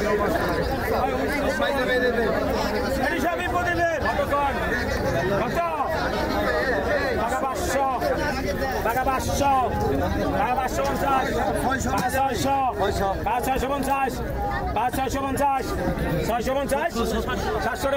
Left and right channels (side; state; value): both; identical; correlation 1.00